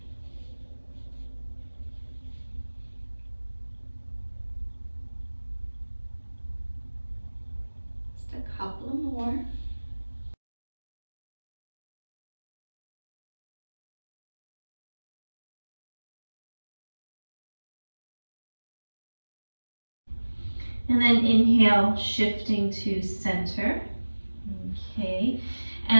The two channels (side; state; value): both; inverted; correlation -1.00